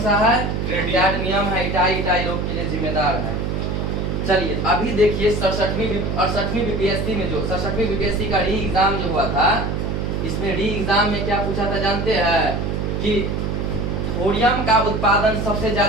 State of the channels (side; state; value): right; noise; hum, 1 dB below the sound